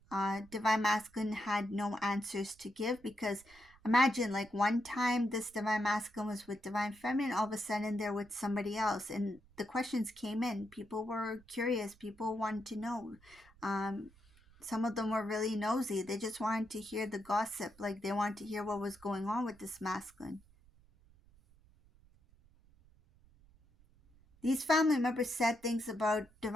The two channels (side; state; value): right; noise; rumble, 27 dB below the sound